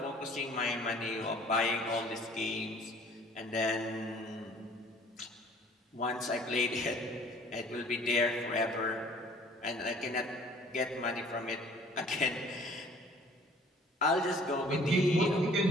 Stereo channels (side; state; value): both; normal; correlation 0.53